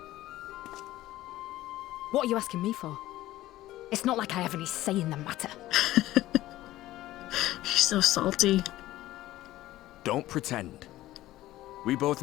What are you asking me for? It's not like I have any say in the matter. She's so salty. Don't pretend. We both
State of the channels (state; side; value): quieter; right; 15.6 dB